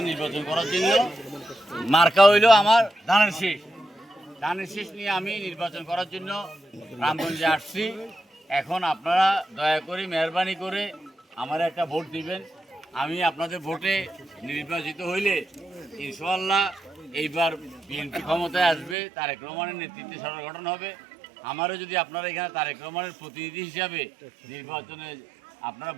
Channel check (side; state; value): left; drops out; at 18.9 s